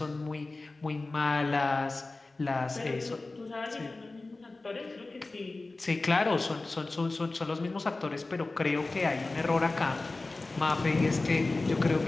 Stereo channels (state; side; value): quieter; right; 3.3 dB